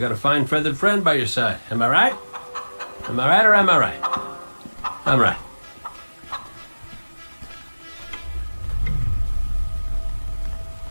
a fine feathered friend by your side? Am I right? Am I right or am I right? I'm right.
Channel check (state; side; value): inverted; both; correlation -1.00